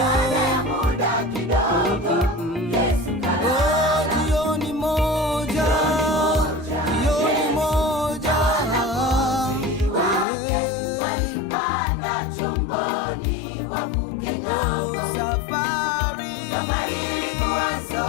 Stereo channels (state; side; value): drops out; right; at 10.2 s